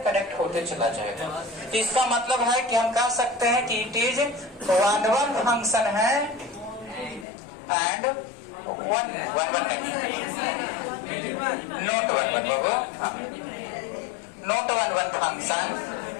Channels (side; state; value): right; drops out; at 7.2 s